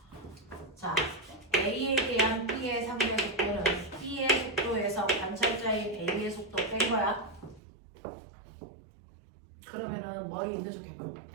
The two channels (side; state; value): left; drops out; at 7.6 s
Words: A에 대한 B의 상대 속도는 B의 속도에서 관찰자인 A의 속도 뺀 거야. 그러면은 머리 있는 척 해봐.